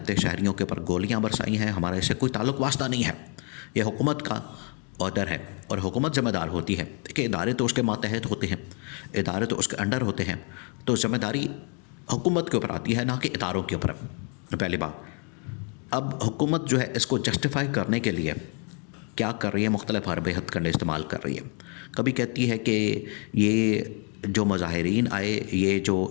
شہریوں کے اوپر گولیاں برسائی ہیں، ہمارا اس سے کوئی تعلق واسطہ نہیں ہے، یہ حکومت کا آرڈر ہے، اور حکومت ذمہ دار ہوتی ہے کہ ادارے تو اس کے ماتحت ہوتے ہیں، ادارے تو اس کے انڈر ہوتے ہیں، تو ذمہ داری حکومت کے اوپر آتی ہے، نہ کہ اداروں کے اوپر، پہلی بات۔ اب حکومت جو ہے اس کو جسٹیفائی کرنے کے لیے کیا کر رہی ہے؟ مختلف حرب ہتھ کنڈے استعمال کر رہی ہے۔ کبھی کہتی ہے کہ یہ جو مظاہرین آئے، یہ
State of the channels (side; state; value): right; quieter; 37.3 dB